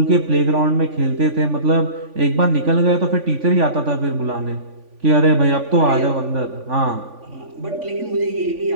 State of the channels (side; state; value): left; late; 3.5 ms